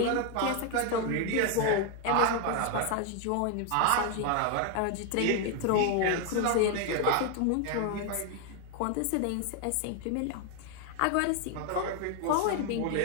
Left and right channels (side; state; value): both; different; correlation 0.01